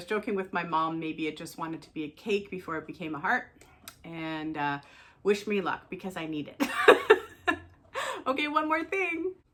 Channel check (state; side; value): identical; both; correlation 1.00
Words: joking with my mom, maybe it just wanted to be a cake before it became a heart, and wish me luck because I need it. Okay, one more thing.